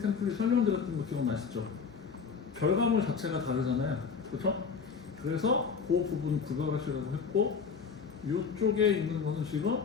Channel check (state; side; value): quieter; right; 5.8 dB